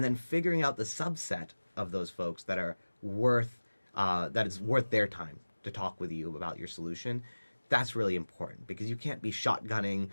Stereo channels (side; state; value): both; inverted; correlation -1.00